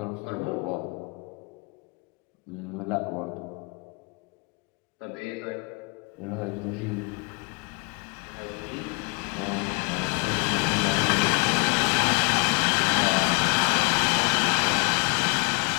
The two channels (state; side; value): quieter; right; 31.9 dB